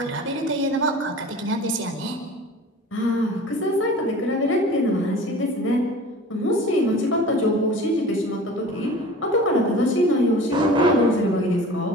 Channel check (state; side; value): normal; both; correlation 0.41